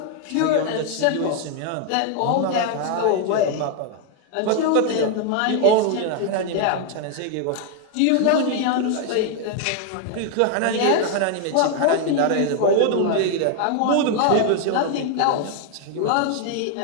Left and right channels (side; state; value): both; different; correlation 0.00